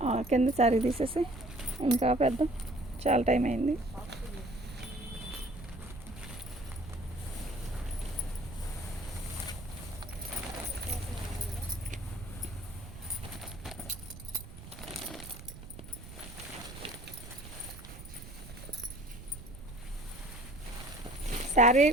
కింద శారీ తీసేసి ఇంకా పెద్ద చాలా టైం అయింది. శారీ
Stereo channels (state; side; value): noise; right; rumble, 14 dB below the sound